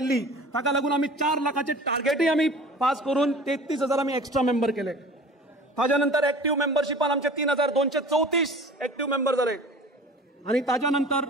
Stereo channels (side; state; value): both; normal; correlation 0.42